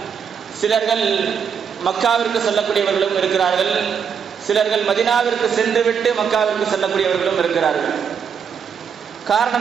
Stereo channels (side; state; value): left; quieter; 7.1 dB